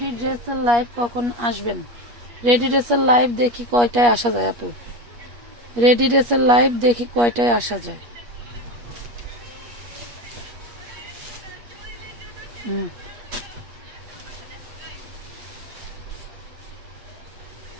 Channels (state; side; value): late; left; 8.4 ms